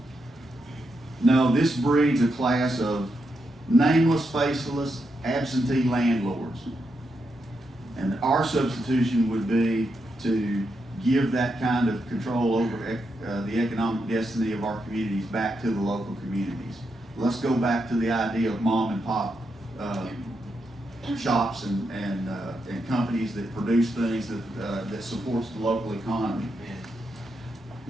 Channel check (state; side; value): normal; both; correlation 0.83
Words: No, this breeds a class of nameless, faceless, absentee landlords. And our substitution would be to give that kind of control over the economic destiny of our communities back to the local communities. Let's go back to the idea of mom and pop shops and companies that produce things that supports the local economy.